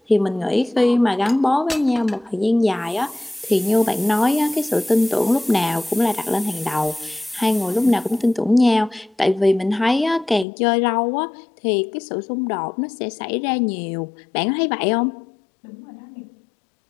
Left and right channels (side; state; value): right; drops out; at 10.5 s